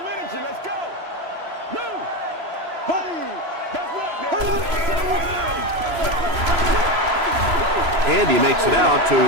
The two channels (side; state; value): left; late; 3.0 ms